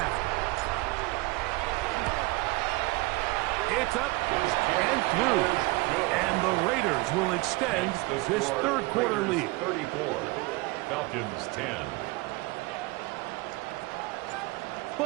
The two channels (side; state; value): left; quieter; 23.2 dB